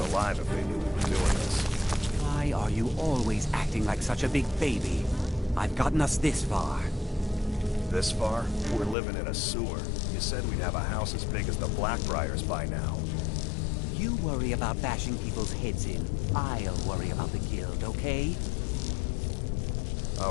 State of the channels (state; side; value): drops out; right; at 9.0 s